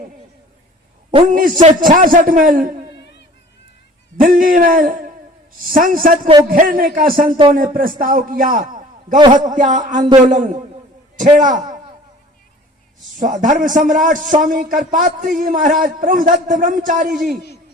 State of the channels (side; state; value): both; normal; correlation 0.48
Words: 1966 में दिल्ली में संसद को घेरने का संतों ने प्रस्ताव किया, गौ हत्या आंदोलन छेड़ा। धर्म सम्राट स्वामी करपात्री जी महाराज, प्रभुदत्त ब्रह्मचारी जी,